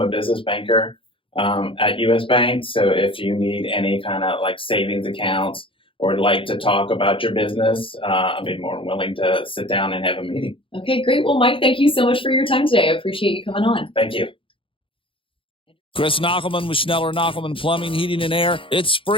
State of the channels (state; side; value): late; right; 0.25 ms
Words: a business banker at U.S. Bank, so if you need any kind of savings accounts or like to talk about your business, I'd be more than willing to sit down and have a meeting. Okay, great. Well, Mike, thank you so much for your time today. I appreciate you coming on. Thank you. Chris Knockelman with Schneller Knockelman Plumbing, Heating, and Air. It's